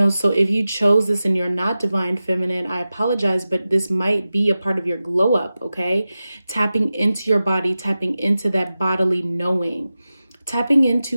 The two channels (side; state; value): both; inverted; correlation -0.94